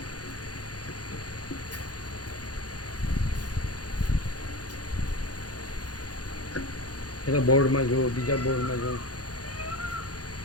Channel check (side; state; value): right; late; 0.68 ms